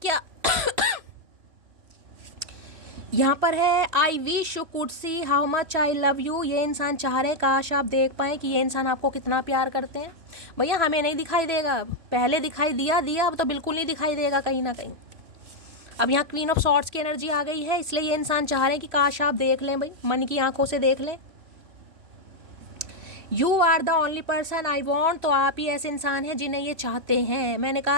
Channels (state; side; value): late; left; 3.0 ms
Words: यहाँ पर है I wish you could see how much I love you, ये इंसान चाह रहे हैं काश आप देख पाएँ कि ये इंसान आपको कितना प्यार करते हैं। भैया हमें नहीं दिखाई देगा, पहले दिखाई दिया, अब तो बिल्कुल नहीं दिखाई देगा कहीं ना कहीं। अब यहाँ क्वीन ऑफ सॉर्ड्स की एनर्जी आ गई है, इसलिए ये इंसान चाह रहे हैं कि काश आप देख लें भाई, मन की आंखों से देख लें। You are the only person I want, तो आप ही ऐसे इंसान हैं जिन्हें ये चाहते हैं। मैंने